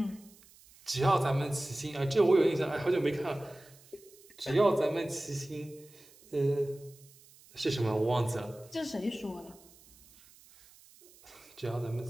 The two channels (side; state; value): right; noise; hiss, 25 dB below the sound